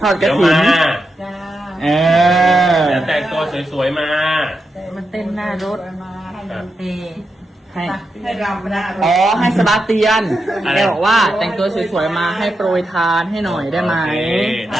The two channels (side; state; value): both; normal; correlation 0.87